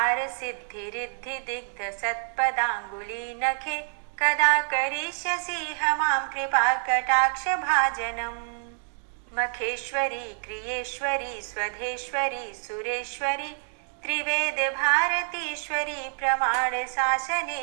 सिद्धि रिद्धि दिग्ध सत्पदांगुली नखे कदा करिष्यसि मां कृपा कटाक्ष भाजनम्। मखेश्वरी क्रियेश्वरी स्वधेश्वरी सुरेश्वरी त्रिवेद भारतीश्वरी प्रमाण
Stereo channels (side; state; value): left; silent; digital silence